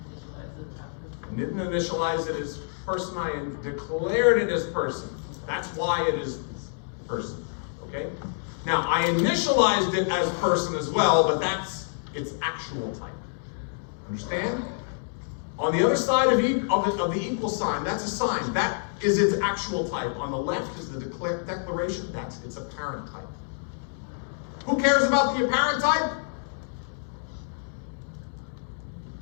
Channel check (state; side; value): silent; right; digital silence